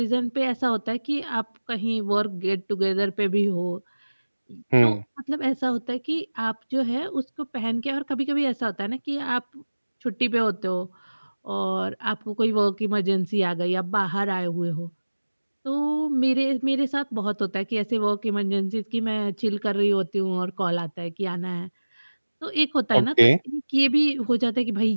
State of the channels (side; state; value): both; inverted; correlation -1.00